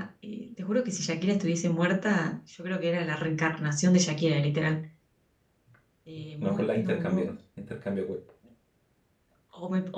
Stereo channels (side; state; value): both; identical; correlation 1.00